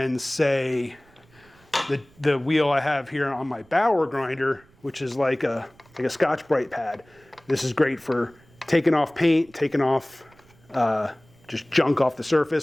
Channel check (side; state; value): right; noise; rumble, 29 dB below the sound